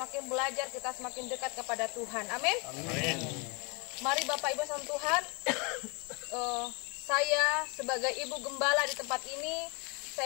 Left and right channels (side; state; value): right; quieter; 31.4 dB